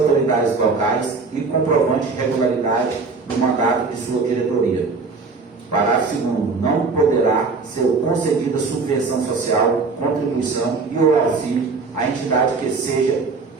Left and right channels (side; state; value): left; quieter; 4.3 dB